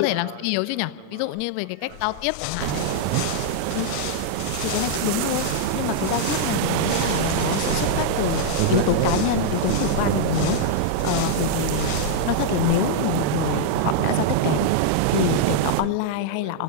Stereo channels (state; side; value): different; both; correlation -0.01